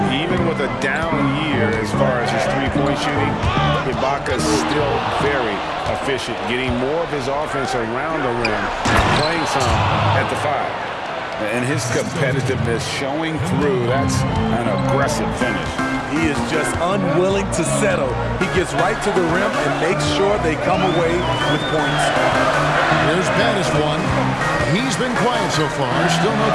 Even with a down year as far as his three-point shooting, Ibaka's still very, efficient, getting more of his offense around the rim, playing some at the 5. And his competitiveness showing through. That's an aggressive finish. He is just unwilling to settle. He gets right to the rim and makes sure they come away with points. Here's Baddest one. He's been quiet so far. Still no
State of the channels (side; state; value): both; identical; correlation 1.00